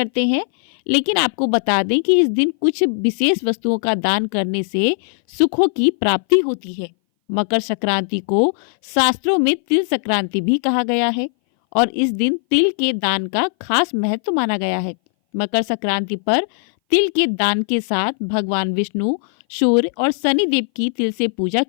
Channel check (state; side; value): silent; right; 60 dB below the other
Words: हैं, लेकिन आपको बता दें कि इस दिन कुछ विशेष वस्तुओं का दान करने से सुखों की प्राप्ति होती है। मकर संक्रांति को शास्त्रों में तिल संक्रांति भी कहा गया है और इस दिन तिल के दान का खास महत्व माना गया है। मकर संक्रांति पर तिल के दान के साथ भगवान विष्णु, सूर्य और शनि देव की तिल से पूजा